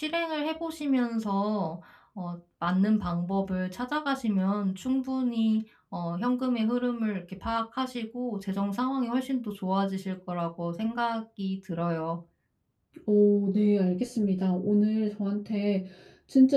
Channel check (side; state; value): both; identical; correlation 1.00